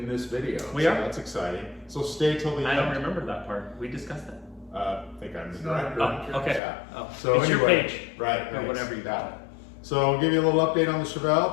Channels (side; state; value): right; drops out; at 6.6 s